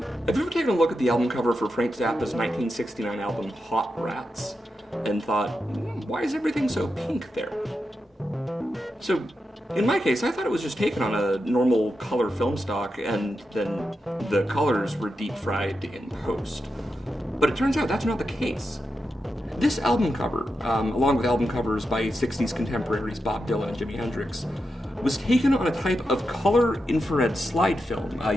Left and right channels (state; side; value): normal; both; correlation 0.88